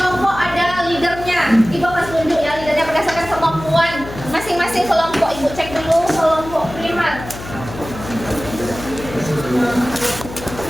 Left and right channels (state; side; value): noise; left; hum, 12 dB below the sound